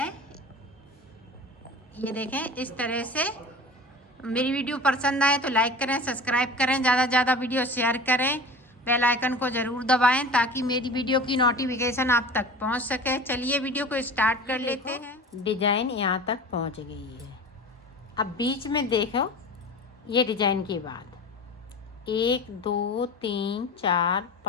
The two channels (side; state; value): both; normal; correlation 0.36